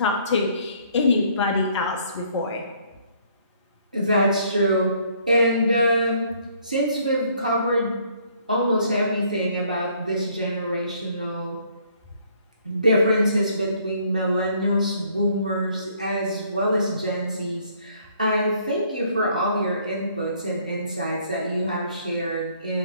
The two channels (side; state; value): both; inverted; correlation -0.63